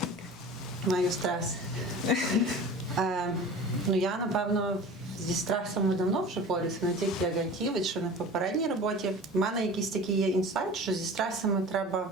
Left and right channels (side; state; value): both; normal; correlation 0.38